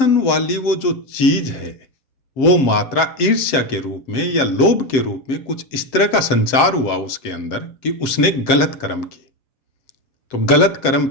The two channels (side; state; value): right; late; 7.7 ms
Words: वाली वो जो चीज है, वो मात्रा ईर्ष्या के रूप में या लोभ के रूप में कुछ इस तरह का संचार हुआ उसके अंदर कि उसने गलत कर्म किए। तो गलत कर्म